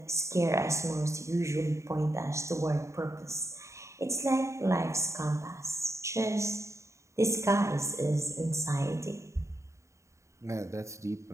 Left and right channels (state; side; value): late; left; 0.14 ms